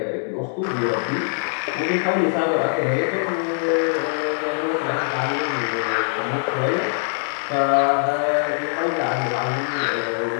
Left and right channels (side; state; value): right; silent; digital silence